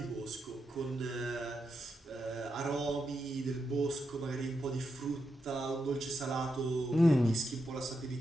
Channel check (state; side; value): normal; both; correlation 0.85